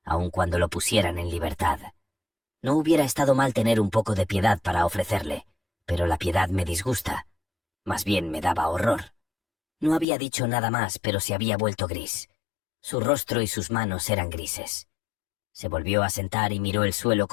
aun cuando lo pusieran en libertad. No hubiera estado mal tener un poco de piedad para ofrecerle, pero la piedad me disgusta. Más bien me daba horror. No había dicho nada más, pero se había vuelto gris. Su rostro y sus manos eran grises. Se volvió a sentar y miró el suelo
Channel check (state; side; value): drops out; right; at 10.1 s